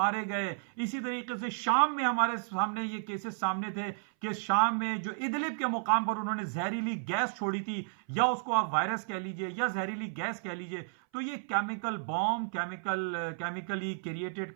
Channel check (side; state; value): left; silent; 56 dB below the other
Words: گئے، اسی طریقے سے شام میں ہمارے سامنے یہ کیسز سامنے تھے کہ شام میں جو ادلب کے مقام پر انہوں نے زہریلی گیس چھوڑی تھی، یا اس کو آپ وائرس کہہ لیجئے یا زہریلی گیس کہہ لیجئے، تو یہ کیمیکل بام، کیمیکلی کریٹڈ،